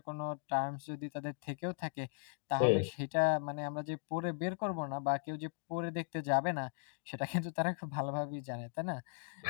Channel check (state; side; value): silent; right; digital silence